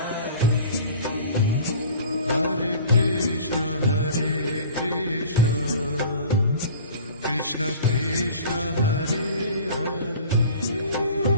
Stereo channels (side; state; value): both; inverted; correlation -0.43